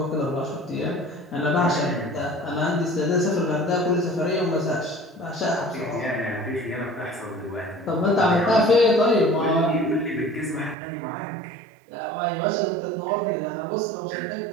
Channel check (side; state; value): left; drops out; at 10.8 s